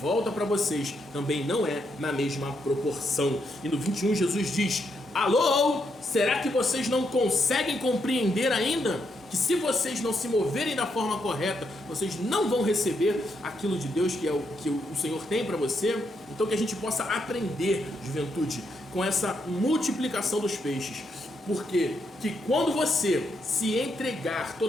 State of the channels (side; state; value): both; normal; correlation 0.79